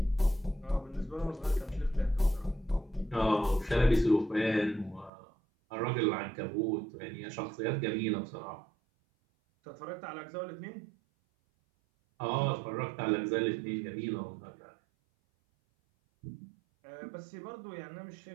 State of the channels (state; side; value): drops out; left; at 5.1 s